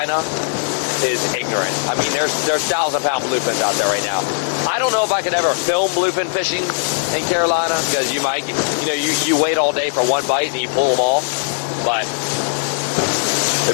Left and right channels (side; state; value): right; silent; digital silence